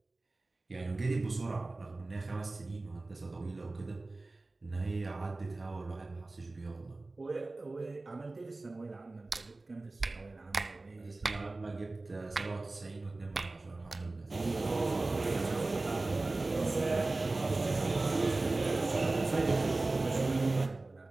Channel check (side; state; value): left; quieter; 3.2 dB